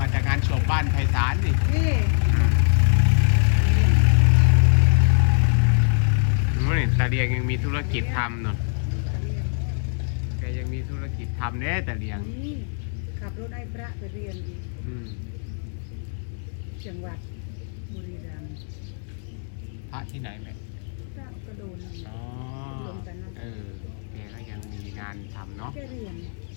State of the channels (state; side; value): silent; right; 63 dB below the other